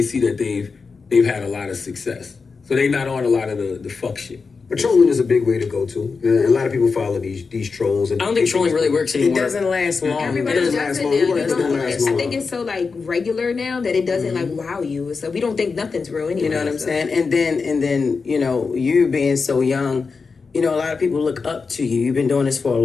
see that they've had a lot of success. So they not on a lot of the fuck shit. But trolling is a big way to go to. And a lot of people follow these trolls. And I don't think trolling really works anymore. It doesn't last long. Everybody doesn't does it last now. long. It doesn't last I long. think it's so like regular now that it doesn't like wow you. So we don't think nothing's real anyway. You know what I'm so. saying? And then, you being so young, a lot of people look up to you. You've been doing this for a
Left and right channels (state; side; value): quieter; right; 4.8 dB